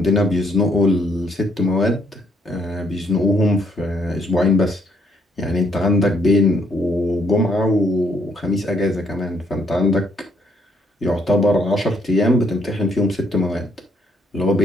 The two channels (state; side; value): normal; both; correlation 0.70